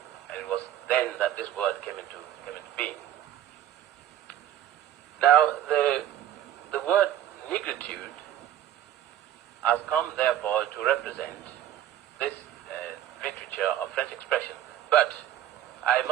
and it was then that this word came into being. Now, the word negritude has come, therefore, to represent this literature of French expression. But I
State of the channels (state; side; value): quieter; left; 11.5 dB